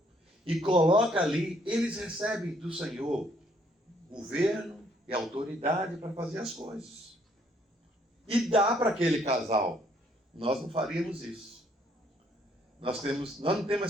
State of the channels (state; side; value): normal; both; correlation 0.67